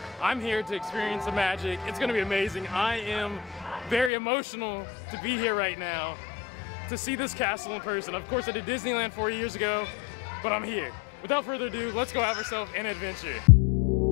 I'm here to experience the magic. It's gonna be amazing. I am very emotional to be here right now, to see this castle in person. Of course, I did Disneyland 4 years ago, but I'm here. Without further ado, let's go have ourselves an adventure.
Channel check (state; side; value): drops out; right; at 4.1 s